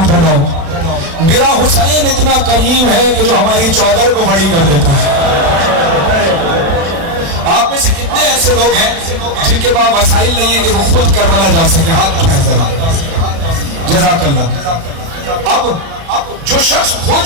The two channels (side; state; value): left; late; 36 ms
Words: پھیلاؤ. میرا حسین اتنا کریم ہے کہ جو ہماری چادر کو بڑی کر دیتا ہے. آپ میں سے کتنے ایسے لوگ ہیں جن کے پاس وسائل نہیں ہے کہ وہ خود کربلا جا سکے؟ ہاتھ اٹھائیں ذرا. جزاک اللہ. اب جو شخص